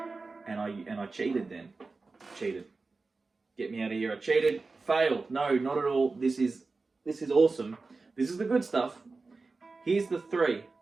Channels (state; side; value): quieter; left; 3.9 dB